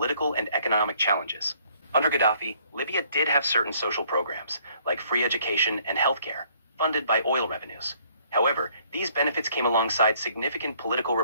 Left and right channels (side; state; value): both; inverted; correlation -0.63